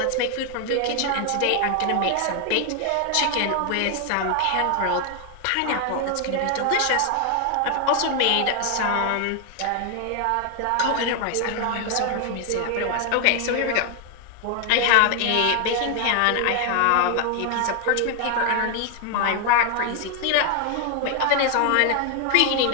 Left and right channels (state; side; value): different; both; correlation 0.00